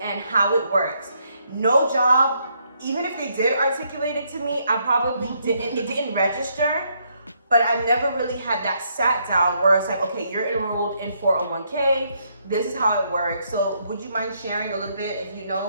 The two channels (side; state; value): both; inverted; correlation -0.74